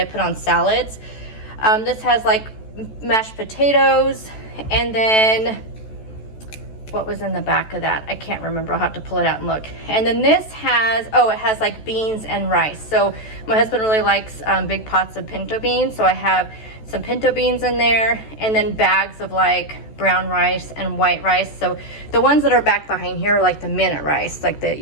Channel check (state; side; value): late; right; 14 ms